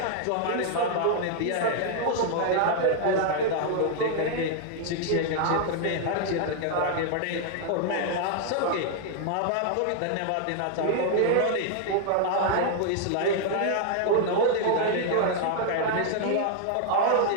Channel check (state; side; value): different; both; correlation 0.00